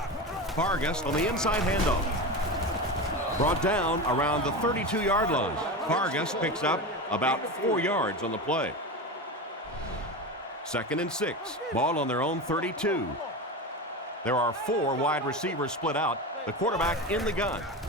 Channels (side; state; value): both; normal; correlation 0.23